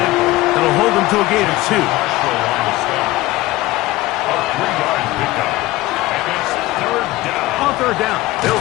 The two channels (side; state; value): right; quieter; 18.2 dB